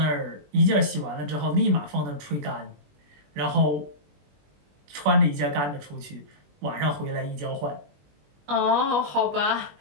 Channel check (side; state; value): left; late; 21 ms